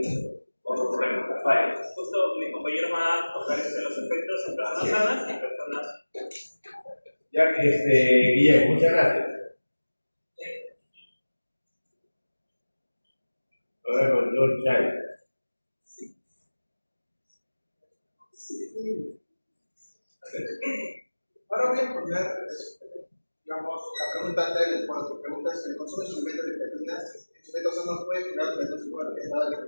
otro problema, la falla. Justo mis compañeros van a tocar los efectos en personas sanas y personas. Ya que, Guillermo, muchas gracias. Ahora con John Chay. Ahora voy a poner, digamos, la pregunta anterior, cuando tu pregunta es: ¿el consumo de suplementos de creatina en sujetos sanos puede generar menos?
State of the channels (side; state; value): both; inverted; correlation -1.00